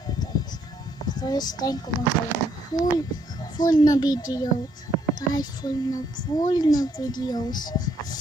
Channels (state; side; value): normal; both; correlation 0.71